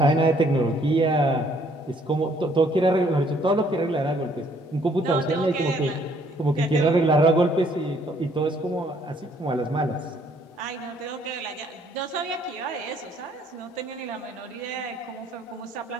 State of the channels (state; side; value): normal; both; correlation 0.64